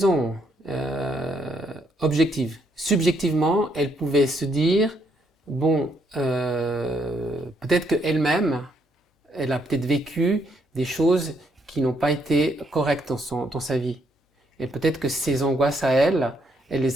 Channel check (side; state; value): both; normal; correlation 0.73